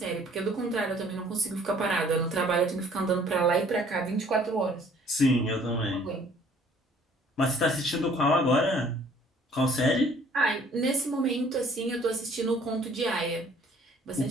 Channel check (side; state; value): both; normal; correlation 0.57